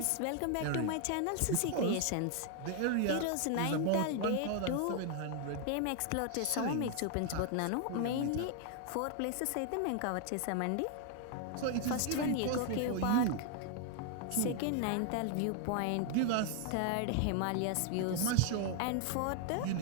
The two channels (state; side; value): different; both; correlation 0.00